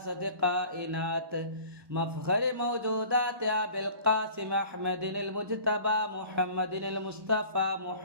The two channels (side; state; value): left; late; 1.1 ms